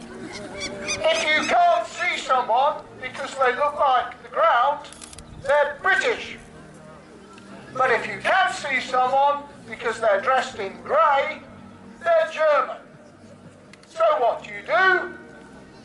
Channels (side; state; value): both; identical; correlation 1.00